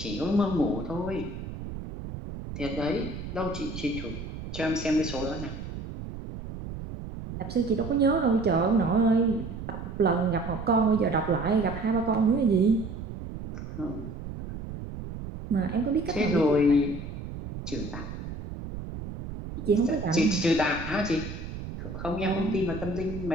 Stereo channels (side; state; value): right; noise; rumble, 9 dB below the sound